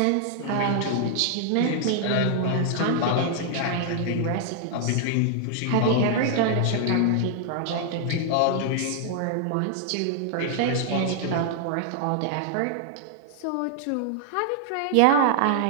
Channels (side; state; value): both; different; correlation -0.01